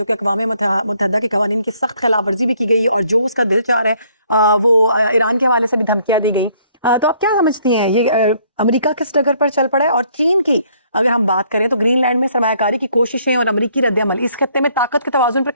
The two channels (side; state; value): both; inverted; correlation -0.65